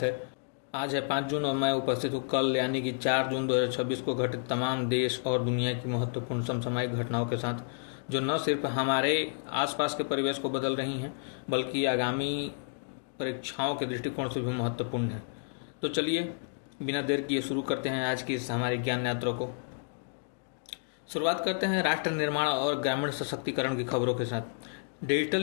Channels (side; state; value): right; silent; digital silence